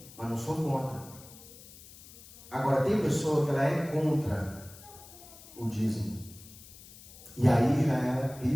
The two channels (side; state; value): left; noise; hiss, 19 dB below the sound